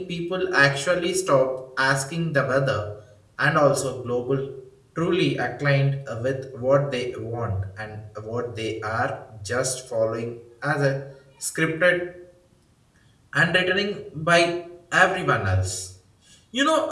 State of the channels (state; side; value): identical; both; correlation 1.00